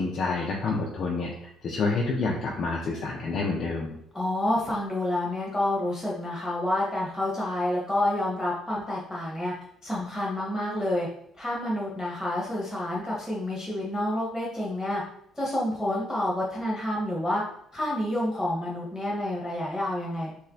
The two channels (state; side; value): normal; both; correlation 0.81